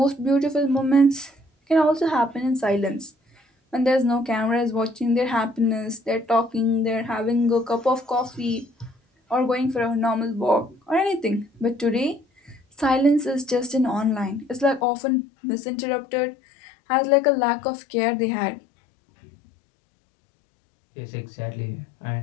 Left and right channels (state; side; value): drops out; right; at 14.8 s